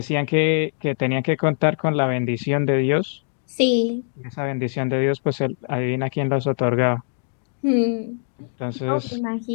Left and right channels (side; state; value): right; silent; digital silence